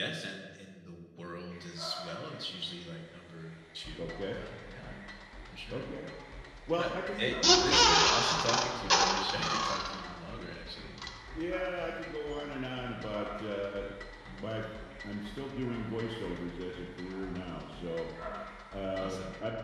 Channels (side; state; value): both; identical; correlation 1.00